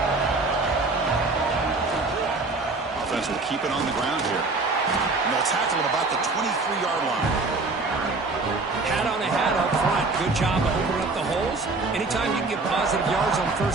Offense will keep it on the ground here. And they'll tackle him about the 23-yard line. Hat on a hat up front. Good job of opening up the holes. Anytime you can get positive yards on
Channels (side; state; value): left; quieter; 3.6 dB